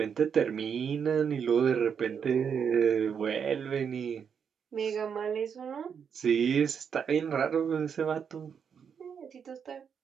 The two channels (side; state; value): left; quieter; 7.1 dB